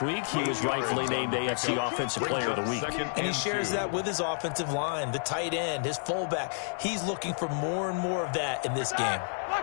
week, he was rightfully named AFC Offensive Player of the Week. And he shares that with his offensive line, the tight end, his fullback. He's looking for more and more of that in this game.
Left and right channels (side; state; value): right; silent; digital silence